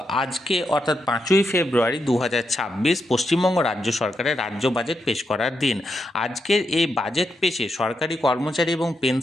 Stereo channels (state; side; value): normal; both; correlation 0.83